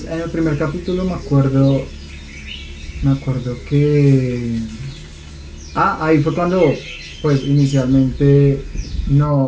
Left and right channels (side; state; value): both; identical; correlation 1.00